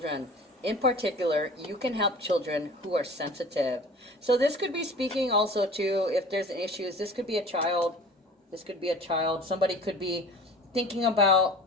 in particular, you can help children who are sensitive. So this could be speaking also to if there's issues. This could be a child. This could be a child. Somebody could be thinking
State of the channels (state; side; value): normal; both; correlation 0.42